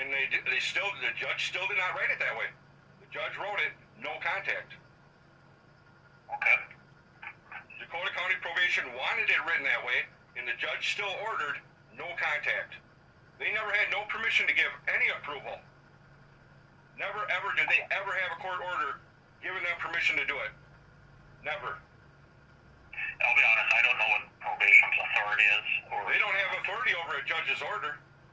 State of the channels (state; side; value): identical; both; correlation 1.00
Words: the judge still did not write it that way. The judge wrote it, no contact. Okay. Dakota County Probation wanted it written that way, and the judge still ordered no contact. They never had no permission to give any approval. Never ever did they ever have a court order giving them permission to do it. Never. I'll be honest, I don't know what probation's authority is. They don't have authority over a judge's order.